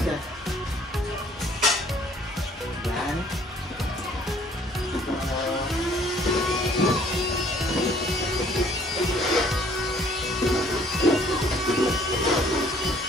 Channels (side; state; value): both; normal; correlation 0.59